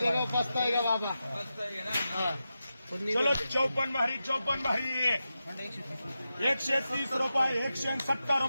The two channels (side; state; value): both; inverted; correlation -0.91